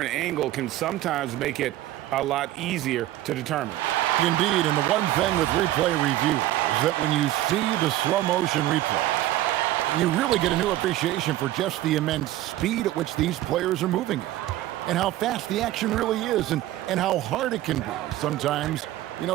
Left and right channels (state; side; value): quieter; left; 14.8 dB